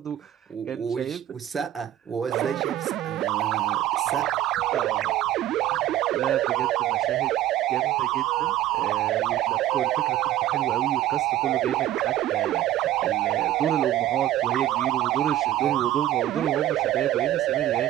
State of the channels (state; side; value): quieter; left; 13.1 dB